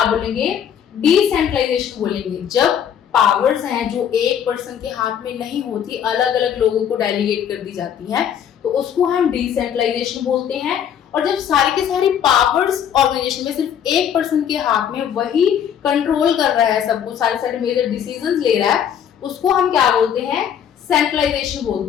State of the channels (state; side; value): quieter; right; 8.9 dB